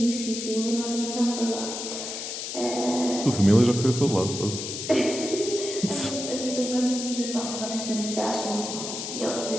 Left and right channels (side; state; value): left; noise; hiss, 6 dB below the sound